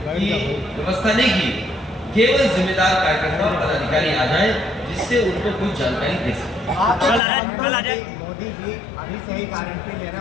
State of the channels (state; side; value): drops out; right; at 7.2 s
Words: की व्यवस्था नहीं की, केवल जिम्मेदार कार्यकर्ता और पदाधिकारी आ जाए जिससे उनको कुछ जानकारी दे सके। कल आ जाए। मोदी जी अभी से ही गारंटी ले रहे